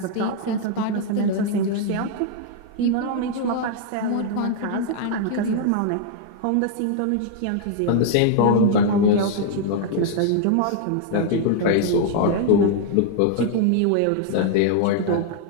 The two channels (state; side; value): different; both; correlation -0.01